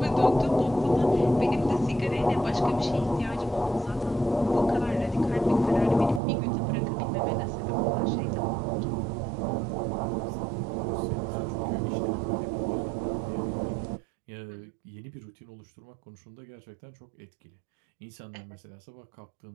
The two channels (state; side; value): drops out; left; at 6.2 s